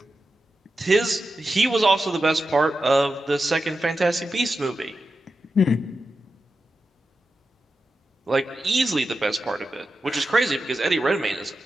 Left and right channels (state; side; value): normal; both; correlation 0.90